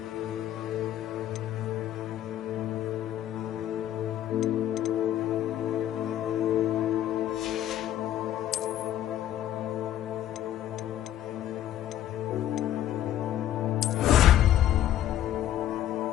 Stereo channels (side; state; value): right; quieter; 12.0 dB